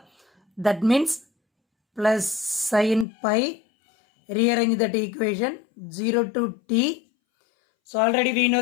that means plus sin pi, rearrange that equation 0 to t. So already we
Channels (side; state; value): right; drops out; at 3.1 s